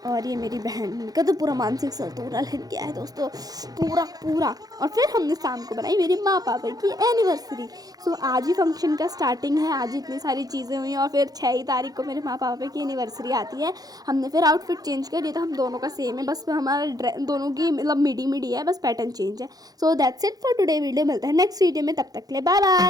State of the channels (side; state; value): left; late; 0.18 ms